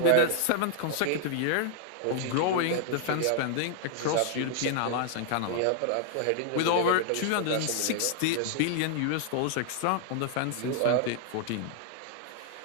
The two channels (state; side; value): different; both; correlation -0.01